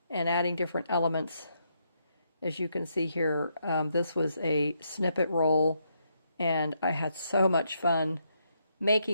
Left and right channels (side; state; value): both; inverted; correlation -0.77